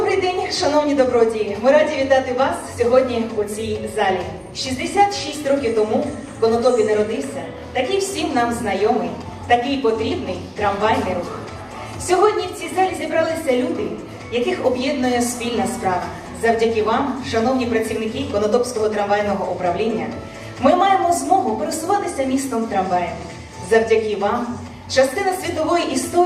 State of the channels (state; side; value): identical; both; correlation 1.00